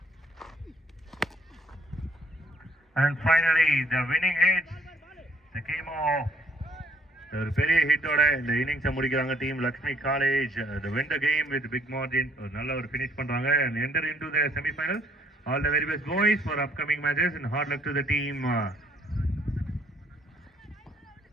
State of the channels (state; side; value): normal; both; correlation 0.65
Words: and finally the winning hits. The came off. ஒரு பெரிய ஹிட்டோட இந்த இன்னிங்ஸை முடிக்கிறாங்க team Lakshmi college. The win the game with big margin. ஒரு நல்ல ஒரு finish பண்றாங்க and enter into the semi-final. All the very best boys for upcoming matches and hard luck to the team.